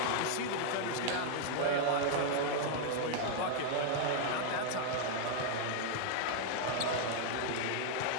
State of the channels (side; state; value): both; different; correlation 0.00